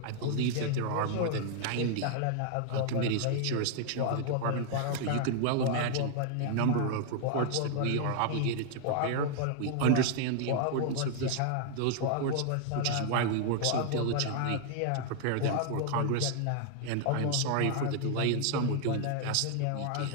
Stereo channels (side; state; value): both; different; correlation 0.00